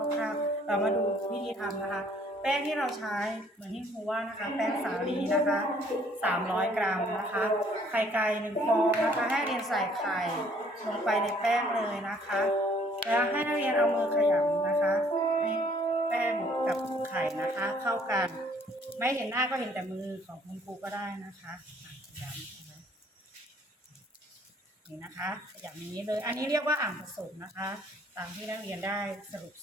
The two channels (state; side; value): normal; both; correlation 0.61